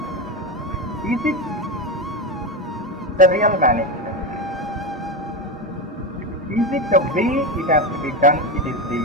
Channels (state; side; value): normal; both; correlation 0.16